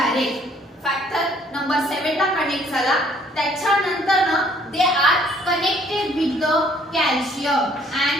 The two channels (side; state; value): both; normal; correlation 0.61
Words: Factor number 7 ला कनेक्ट झाला. त्याच्यानंतर ना they are connected with the calcium and